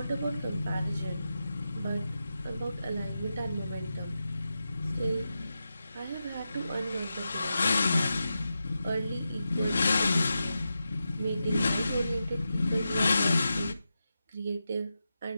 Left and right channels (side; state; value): both; inverted; correlation -0.90